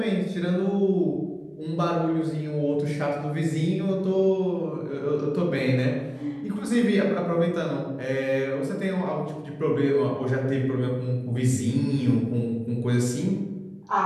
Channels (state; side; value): identical; both; correlation 1.00